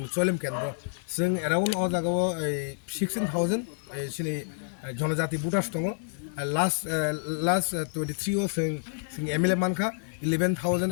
चरिलाम केन्द्र जों एराउन्ड अ जागाव 16000 सिनि जनजाति भोटार्स दङ लास्ट 23 आव जों एमएलए मानखा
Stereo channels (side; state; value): right; silent; digital silence